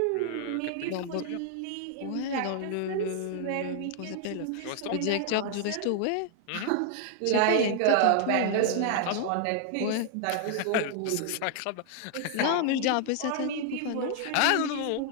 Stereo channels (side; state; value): both; different; correlation 0.00